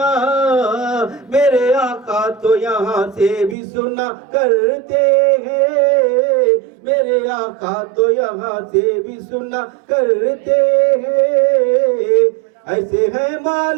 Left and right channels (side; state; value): left; drops out; at 3.6 s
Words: میرے آقا تو یہاں سے بھی سنا کرتے ہیں، میرے آقا تو یہاں سے بھی سنا کرتے ہیں۔ ایسے ہیں